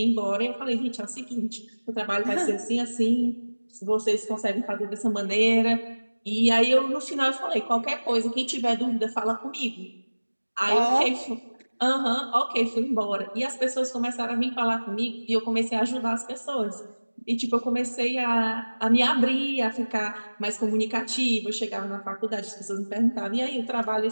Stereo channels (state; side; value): inverted; both; correlation -1.00